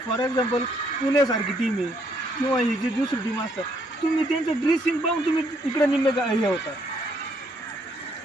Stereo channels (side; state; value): both; normal; correlation 0.70